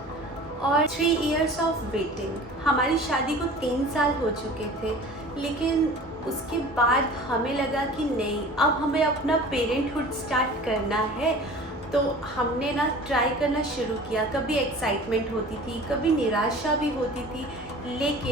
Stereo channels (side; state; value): both; normal; correlation 0.42